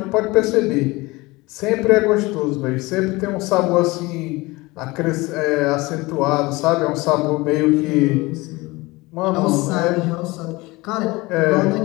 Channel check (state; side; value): quieter; right; 22.3 dB